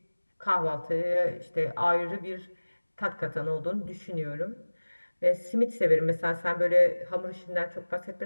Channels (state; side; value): inverted; both; correlation -1.00